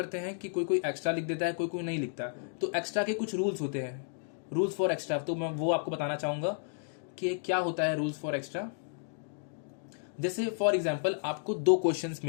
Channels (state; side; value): silent; right; digital silence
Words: हैं कि कोई कोई एक्स्ट्रा लिख देता है, कोई कोई नहीं लिखता। तो एक्स्ट्रा के कुछ रूल्स होते हैं, रूल्स फॉर एक्स्ट्रा, तो मैं वो आपको बताना चाहूंगा कि क्या होता है रूल्स फॉर एक्स्ट्रा। जैसे फॉर एग्जाम्पल आपको 2 क्वेश्चंस